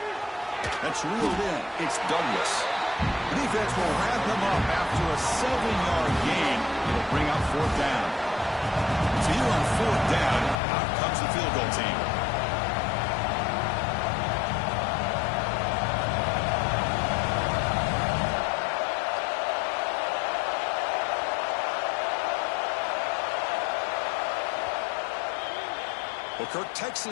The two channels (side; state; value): right; drops out; at 10.6 s